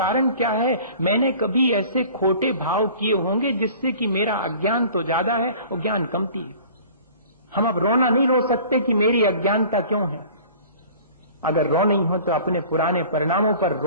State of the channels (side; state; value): both; inverted; correlation -0.46